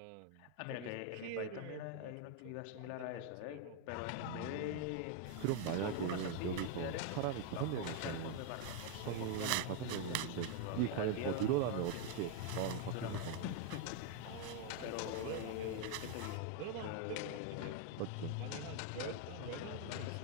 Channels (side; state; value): both; different; correlation 0.01